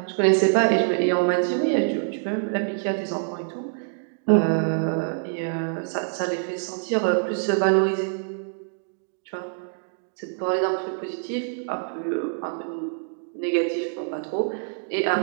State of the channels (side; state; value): left; silent; digital silence